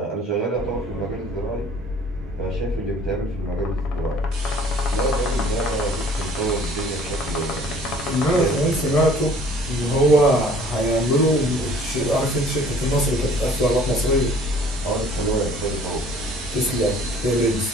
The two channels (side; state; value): both; normal; correlation 0.53